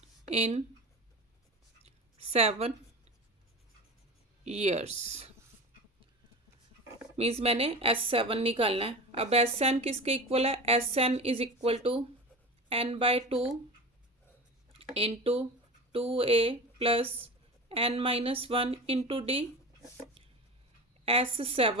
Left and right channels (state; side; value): normal; both; correlation 0.30